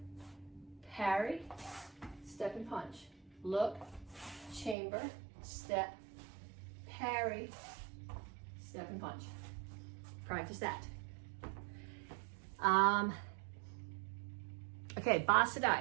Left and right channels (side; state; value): left; drops out; at 4.8 s